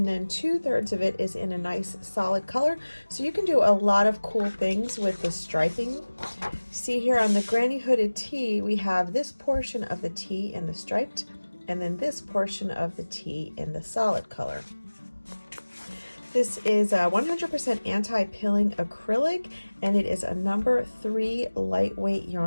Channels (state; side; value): inverted; both; correlation -1.00